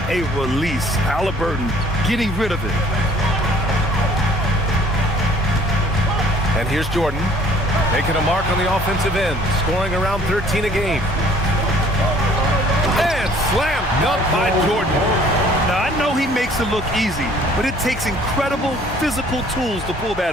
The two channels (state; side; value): normal; both; correlation 0.56